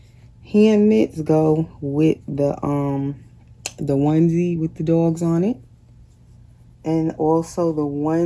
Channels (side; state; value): both; identical; correlation 1.00